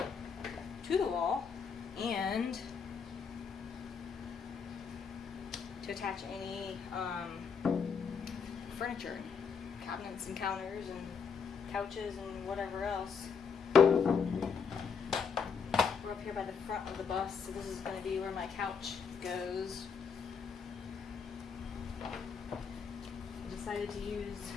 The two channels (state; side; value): quieter; right; 6.0 dB